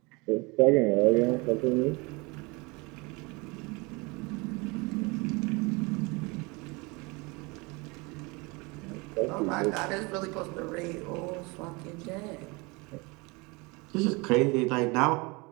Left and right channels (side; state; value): left; quieter; 26.9 dB